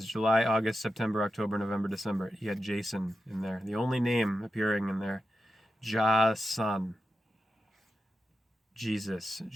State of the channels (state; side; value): normal; both; correlation 0.90